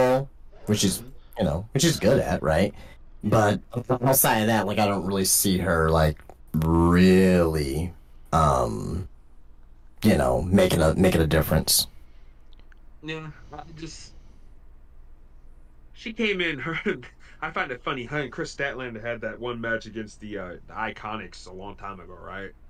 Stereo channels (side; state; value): both; identical; correlation 1.00